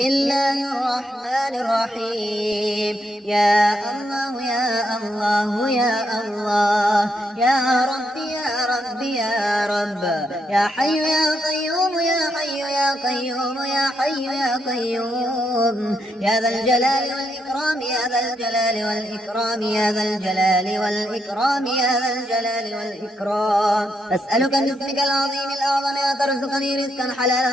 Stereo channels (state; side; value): normal; both; correlation 0.79